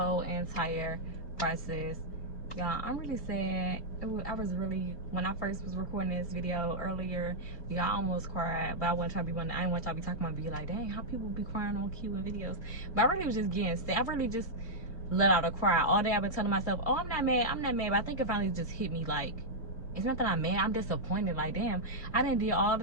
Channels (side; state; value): right; late; 2.8 ms